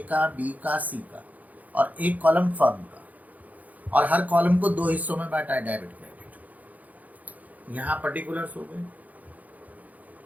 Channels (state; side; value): late; left; 0.077 ms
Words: का, B का, C का, और एक कॉलम फर्म का, और हर कॉलम को 2 हिस्सों में बांटा है, डेबिट क्रेडिट। यहाँ पर्टिकुलर्स हो गए।